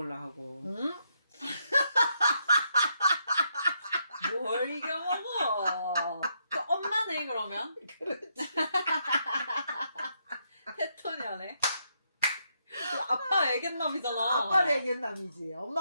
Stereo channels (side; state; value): both; inverted; correlation -0.78